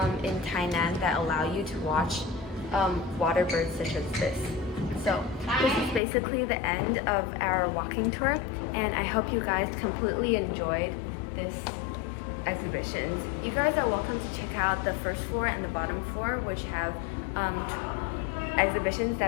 in Tainan that allow you to watch water birds such as this. So this is basically the end of our walking tour, and I hope you guys completely enjoyed this exhibition. You guys are welcome to check out the first floor and the bottom floor, which have exhibitions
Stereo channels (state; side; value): drops out; right; at 6.0 s